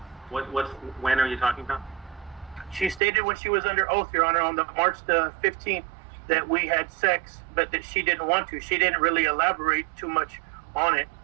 When are you talking about? She stated when she was under oath, Your Honor, on the March the 15th, that we had sex, but that she didn't want to. She didn't really elaborate too much on it.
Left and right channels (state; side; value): drops out; left; at 3.0 s